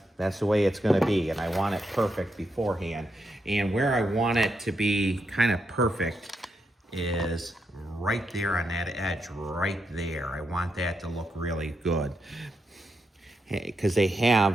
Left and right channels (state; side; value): normal; both; correlation 0.82